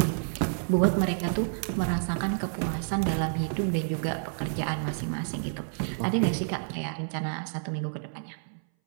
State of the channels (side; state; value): left; silent; 58 dB below the other